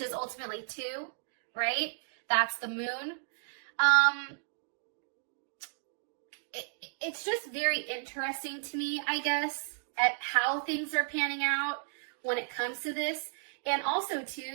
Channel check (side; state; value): left; silent; digital silence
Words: is ultimately 2, right? That's the moon. It's just very interesting to me, I guess, at how things are panning out when it comes to this. And also,